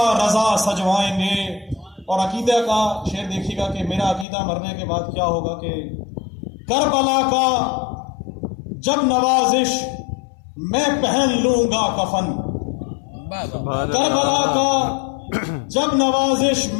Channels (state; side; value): drops out; right; at 4.2 s